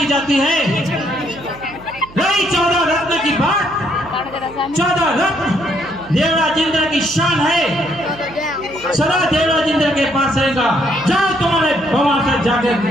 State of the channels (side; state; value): right; noise; hum, 20 dB below the sound